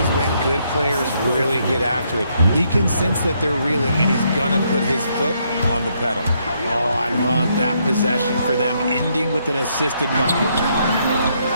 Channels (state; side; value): inverted; both; correlation -0.74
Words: when good players really get after it. He can sense that they're reeling, and he's going to put his foot on the pedal. Oh, I love that possession for them, ending with an assisted bucket.